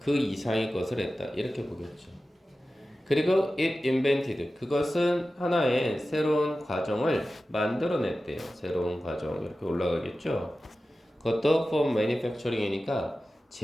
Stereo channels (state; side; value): normal; both; correlation 0.94